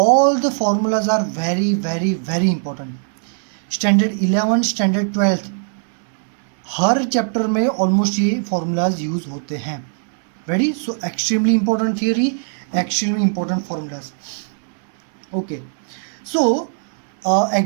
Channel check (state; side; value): silent; left; digital silence